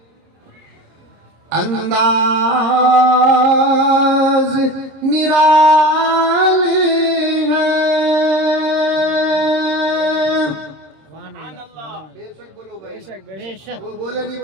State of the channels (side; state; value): left; late; 26 ms